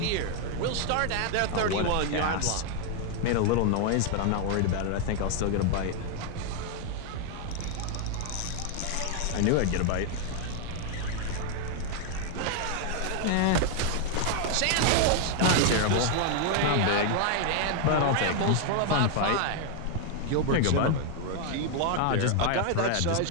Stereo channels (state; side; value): different; both; correlation 0.00